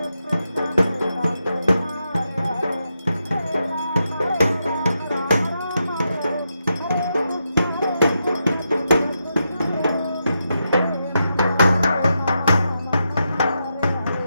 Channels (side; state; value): both; inverted; correlation -0.85